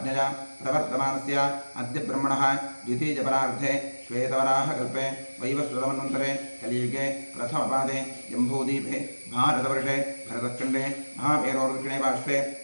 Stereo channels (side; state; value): both; inverted; correlation -1.00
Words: प्रवर्तमानस्य अद्य ब्रह्मणः द्वितीयपरार्धे श्वेतवराहकल्पे वैवस्वतमन्वन्तरे कलियुगे प्रथमपादे जम्बूद्वीपे भारतवर्षे भरतखण्डे महामेरोर्दक्षिणे पार्श्वे